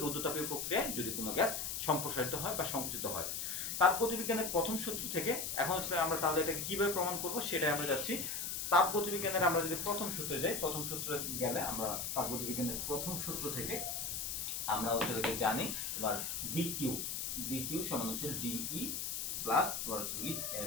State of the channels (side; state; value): left; noise; hiss, 3 dB below the sound